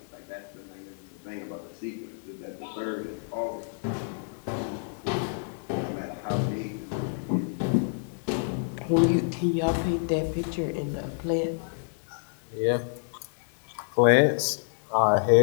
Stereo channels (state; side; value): silent; right; digital silence